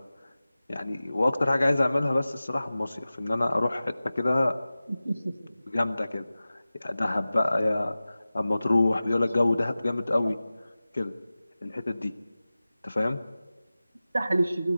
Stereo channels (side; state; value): both; inverted; correlation -0.97